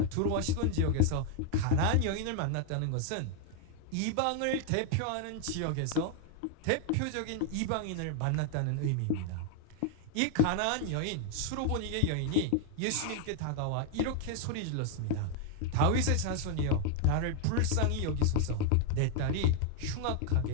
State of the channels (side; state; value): both; different; correlation 0.01